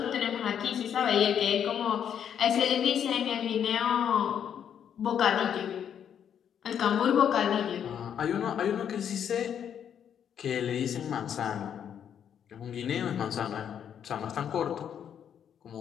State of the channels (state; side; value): quieter; right; 8.7 dB